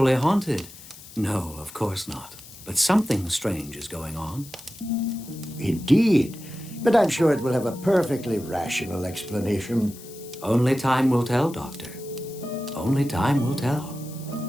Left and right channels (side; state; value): left; noise; hiss, 18 dB below the sound